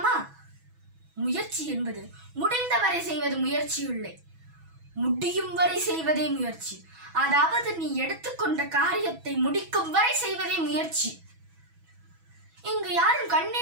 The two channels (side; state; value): left; late; 6.1 ms